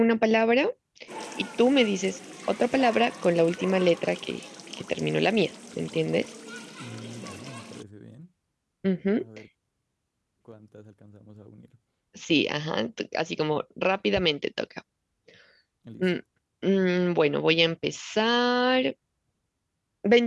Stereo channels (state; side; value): identical; both; correlation 1.00